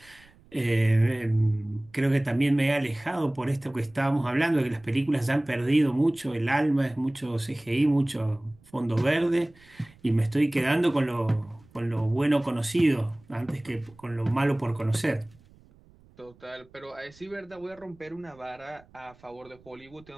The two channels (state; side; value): noise; right; rumble, 27 dB below the sound